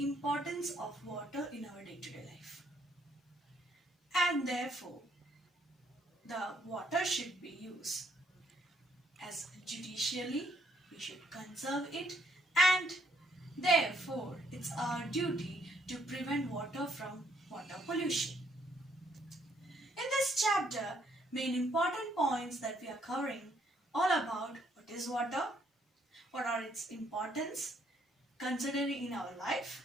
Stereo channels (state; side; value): normal; both; correlation 0.69